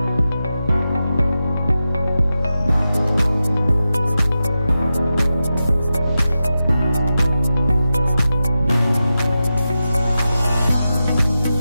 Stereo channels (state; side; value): inverted; both; correlation -0.91